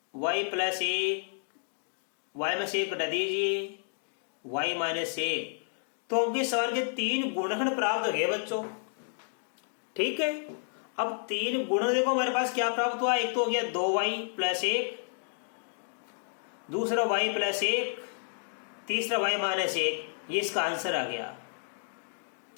y प्लस 1, y में से 1 घटा दीजिए, y माइनस 1, तो हमके सवाल के 3 गुणनखंड प्राप्त हो गए बच्चों, ठीक है। अब 3 गुणन देखो हमारे पास क्या प्राप्त हुआ, एक तो हो गया 2y प्लस 1, दूसरा y प्लस 1, तीसरा y माइनस 1, ये इसका आंसर आ गया,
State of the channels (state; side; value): silent; right; digital silence